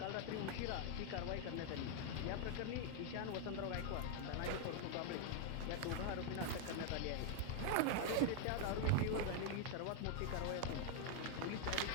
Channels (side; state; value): both; different; correlation 0.00